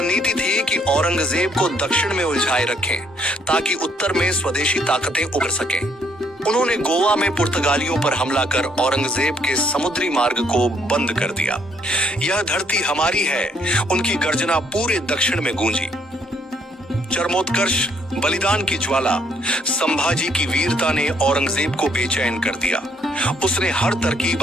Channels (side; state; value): both; normal; correlation 0.68